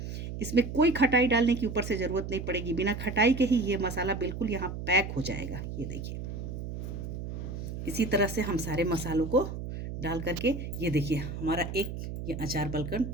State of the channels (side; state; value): right; noise; hum, 7 dB below the sound